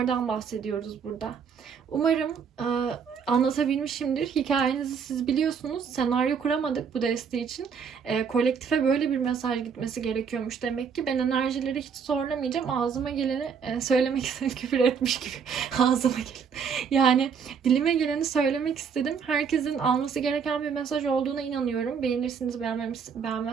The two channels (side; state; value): left; quieter; 6.5 dB